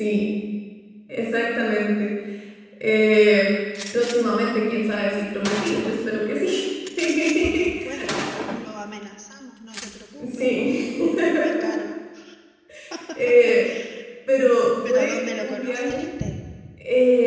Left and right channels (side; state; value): both; identical; correlation 1.00